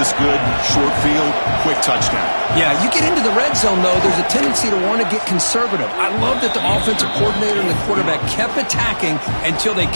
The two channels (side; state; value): both; inverted; correlation -1.00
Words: good. Short field, quick touchdown. Yeah, you get into the red zone, though, there's a tendency to want to get conservative. I love that the offensive coordinator and the quarterback kept attacking until they